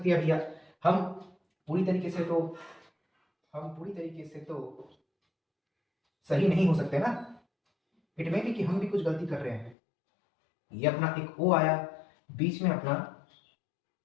है भैया, हम पूरी तरीके से तो सही नहीं हो सकते ना, इट में भी कि हम भी कुछ गलती कर रहे हैं। ये अपना एक O आया, बीच में अपना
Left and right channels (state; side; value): drops out; right; at 9.8 s